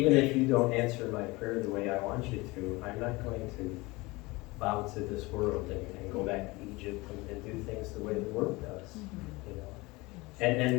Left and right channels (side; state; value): right; quieter; 23.0 dB